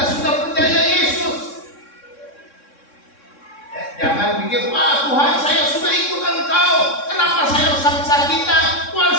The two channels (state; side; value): late; right; 3.6 ms